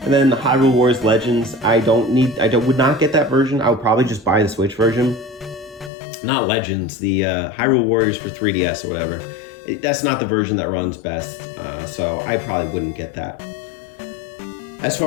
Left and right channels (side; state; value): right; drops out; at 5.9 s